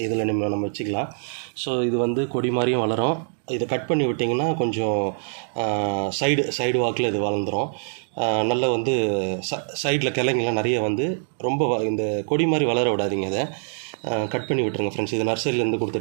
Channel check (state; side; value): silent; left; digital silence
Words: இதில் நம்ம வச்சுக்கலாம். ஸோ இது வந்து கொடி மாதிரியும் வளரும். இதை கட் பண்ணி விட்டிங்கன்னா கொஞ்சம் சைடு வாக்கில் இது வளர்ந்துடும். நல்ல வந்து சைடில் கிளைங்கெல்லாம் நிறைய வந்து ரொம்ப இந்த கொடி மாதிரி வளர விடாதீங்க. இதை கட் பண்ணி விட்டுருங்க ஃப்ரெண்ட்ஸ். இது நர்சரியிலேருந்து கொடுத்த